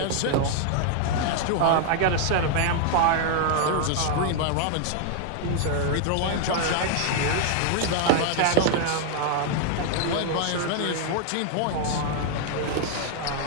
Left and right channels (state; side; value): different; both; correlation 0.00